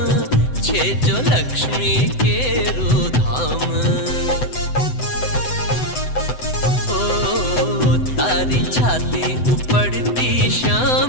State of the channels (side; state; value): right; late; 7.9 ms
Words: छे जो लक्ष्मी के धाम. ओ तारी छाती उपड़ती